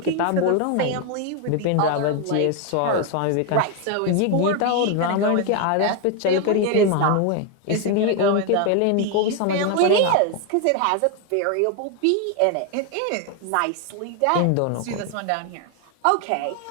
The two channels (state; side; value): different; both; correlation 0.01